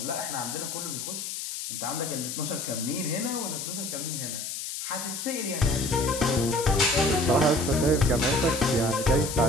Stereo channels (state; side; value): noise; left; hiss, 6 dB below the sound